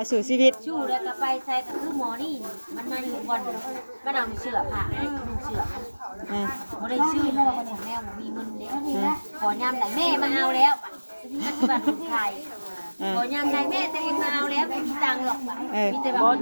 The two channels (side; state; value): both; inverted; correlation -1.00